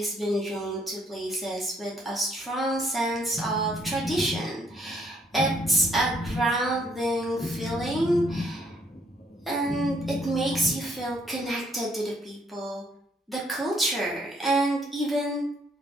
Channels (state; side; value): normal; both; correlation 0.68